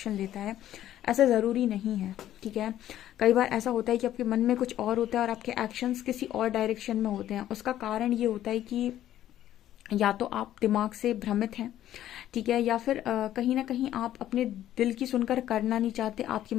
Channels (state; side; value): quieter; right; 12.4 dB